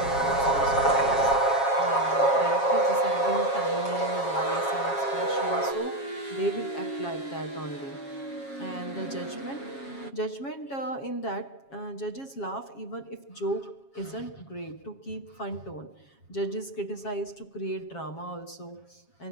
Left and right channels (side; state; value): right; late; 7.3 ms